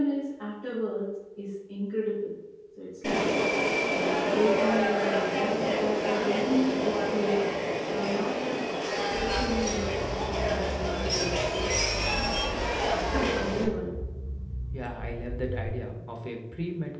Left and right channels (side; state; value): both; identical; correlation 1.00